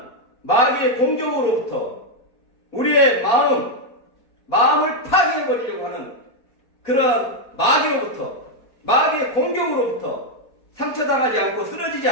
마귀의 공격으로부터 우리의 마음을 파괴해버리려고 하는 그런 마귀의 공격으로부터 상처당하지 않고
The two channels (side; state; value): right; late; 4.2 ms